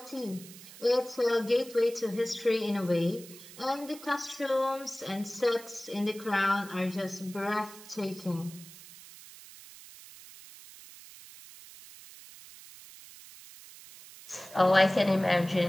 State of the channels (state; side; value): noise; right; hiss, 18 dB below the sound